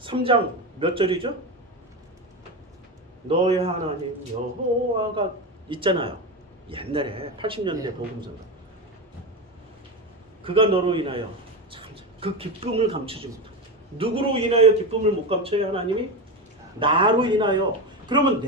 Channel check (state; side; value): normal; both; correlation 0.18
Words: 몇 절이죠? 너의 하나님 여호와가 있잖아요. 옛날에 80년대 복음서가. 그가 너로 인하여 참 그 기쁨을 감추지 못하고. 누구로 인하여 기쁨을 못 감춰요? 하나님이? 나로 인하여. 그러면